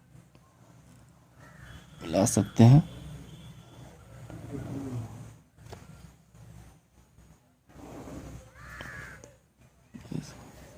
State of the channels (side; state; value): both; identical; correlation 1.00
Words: मिला सकते हैं।